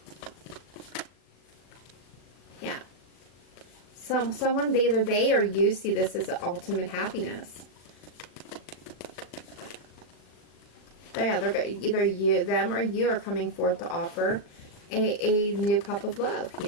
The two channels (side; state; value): right; late; 39 ms